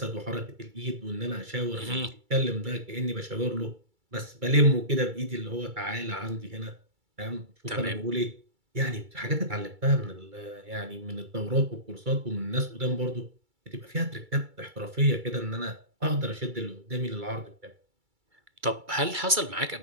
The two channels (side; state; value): left; late; 2.3 ms